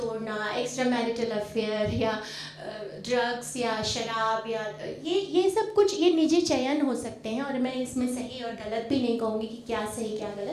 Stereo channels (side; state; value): both; identical; correlation 1.00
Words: एक्स्ट्रा मैरिटल अफेयर या ड्रग्स या शराब या ये सब कुछ ये निजी चयन हो सकते हैं, और मैं इसमें सही और गलत भी नहीं कहूँगी कि क्या सही क्या